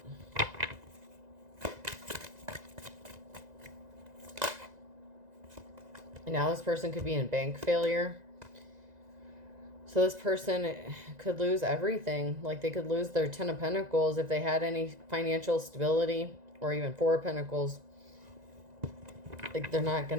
And now this person could be in bank failure. So this person could lose everything. Like they could lose their 10 of Pentacles if they had any financial stability or even Four of Pentacles. Like, they're not going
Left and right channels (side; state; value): left; late; 2.0 ms